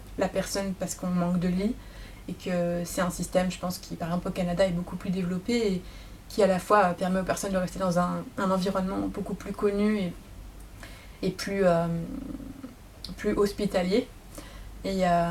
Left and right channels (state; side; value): identical; both; correlation 1.00